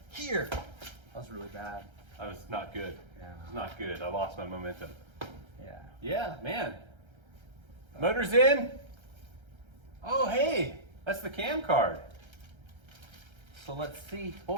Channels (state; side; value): late; left; 1.3 ms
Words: here. That was really bad. I was not good. Yeah. It was not good. I lost my momentum. Yeah. Yeah, man. Motor's in. Oh, hey, that's the cam card. So let's see